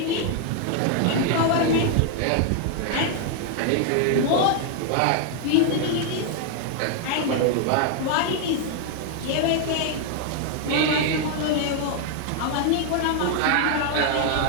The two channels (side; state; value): both; different; correlation 0.00